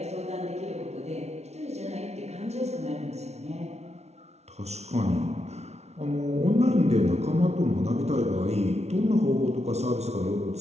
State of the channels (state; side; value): late; left; 0.31 ms